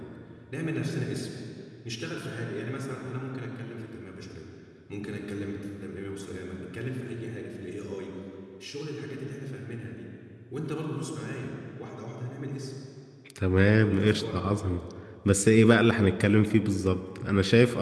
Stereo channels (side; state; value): both; identical; correlation 1.00